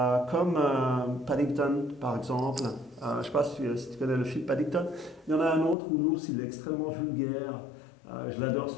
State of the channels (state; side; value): drops out; right; at 5.8 s